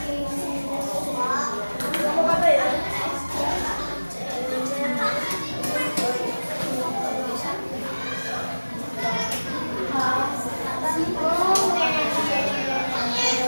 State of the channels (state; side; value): inverted; both; correlation -1.00